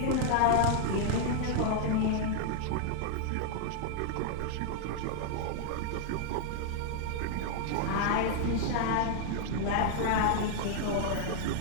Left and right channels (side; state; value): both; different; correlation -0.01